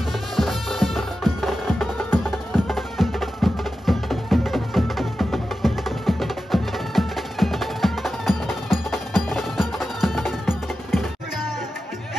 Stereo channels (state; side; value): normal; both; correlation 0.92